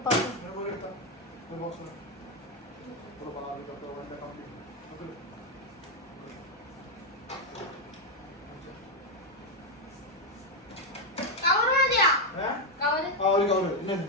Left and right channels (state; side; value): normal; both; correlation 0.03